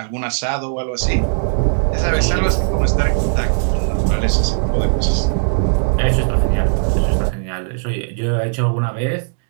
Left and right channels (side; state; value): left; silent; digital silence